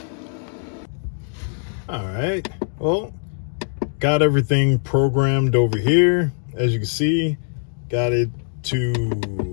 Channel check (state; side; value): silent; right; 59 dB below the other